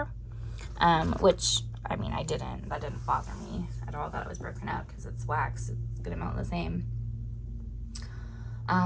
which, I mean, that didn't bother me at all that it was broken up, because it's wax, it's gonna melt the same.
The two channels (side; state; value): both; identical; correlation 1.00